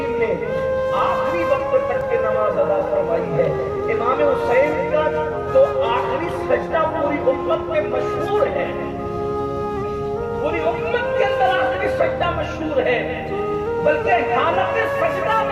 نے آخری وقت تک کی نماز ادا فرمائی ہے۔ امام حسین کا تو آخری سجدہ پوری امت میں مشہور ہے، پوری امت کے اندر آخری سجدہ مشہور ہے، بلکہ حالت سجدہ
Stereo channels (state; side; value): identical; both; correlation 1.00